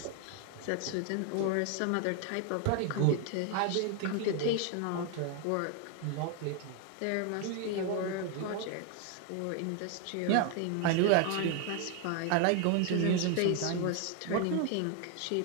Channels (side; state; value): both; different; correlation 0.01